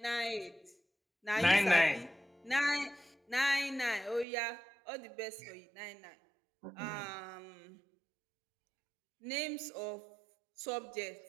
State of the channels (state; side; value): drops out; left; at 4.2 s